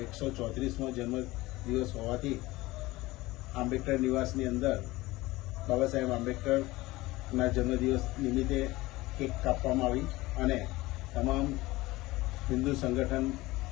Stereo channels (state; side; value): quieter; right; 19.5 dB